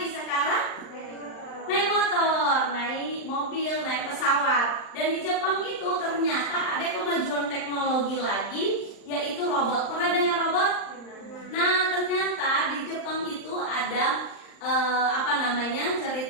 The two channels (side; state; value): right; late; 39 ms